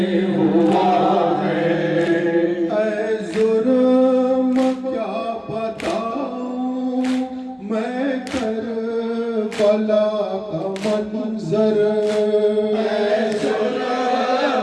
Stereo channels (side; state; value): both; identical; correlation 1.00